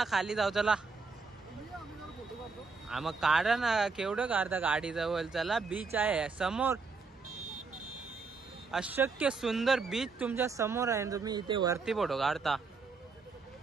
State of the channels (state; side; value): quieter; left; 4.5 dB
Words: खाली जाऊ चला मग काढा ना केवढं काढता गाडी जवळ चला बीच आहे समोर अशक्य सुंदर बीच तुमच्या समोर आहे तुम्ही इथे वरती फोटो काढता